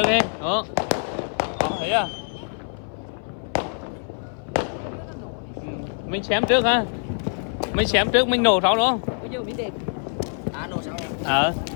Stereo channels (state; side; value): silent; right; 58 dB below the other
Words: đi đó thấy à mình xem trước ha mình xem trước mình nổ sau đúng không nổ sau đấy